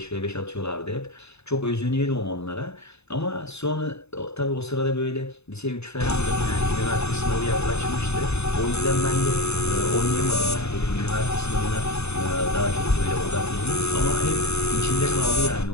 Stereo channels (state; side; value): late; right; 0.80 ms